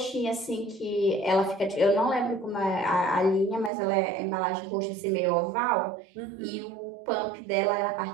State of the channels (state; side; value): drops out; left; at 3.7 s